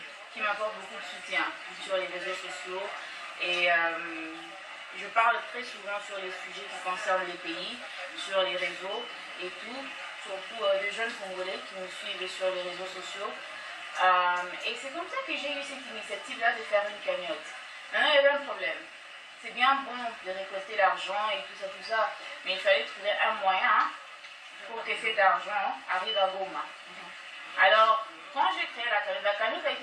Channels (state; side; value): identical; both; correlation 1.00